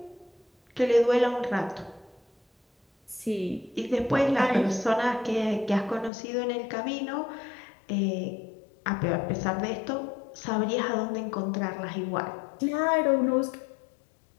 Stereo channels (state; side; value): drops out; right; at 6.1 s